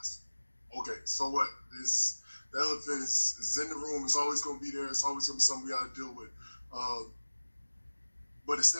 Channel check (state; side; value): inverted; both; correlation -1.00